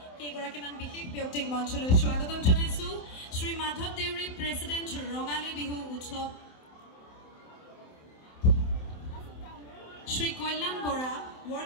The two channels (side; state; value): right; late; 27 ms